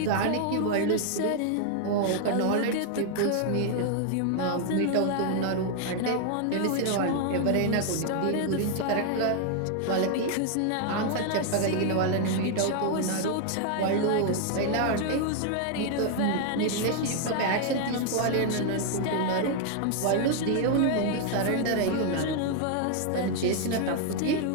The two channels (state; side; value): different; both; correlation 0.00